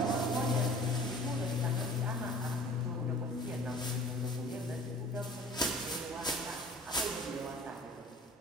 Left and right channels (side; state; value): both; normal; correlation 0.46